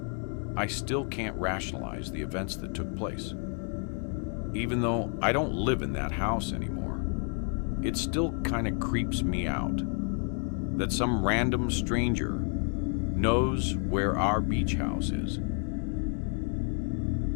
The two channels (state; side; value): quieter; right; 39.7 dB